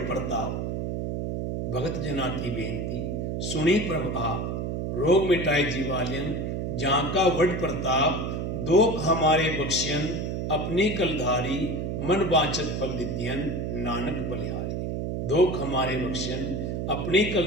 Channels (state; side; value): noise; right; hum, 2 dB below the sound